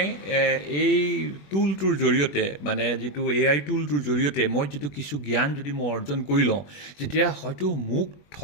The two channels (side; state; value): right; late; 21 ms